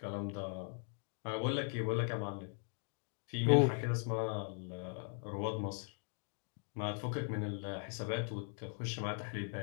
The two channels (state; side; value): silent; right; 51 dB below the other